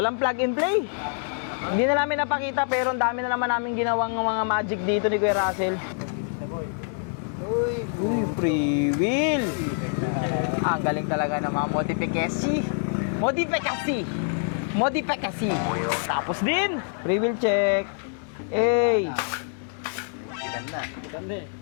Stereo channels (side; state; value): right; silent; 61 dB below the other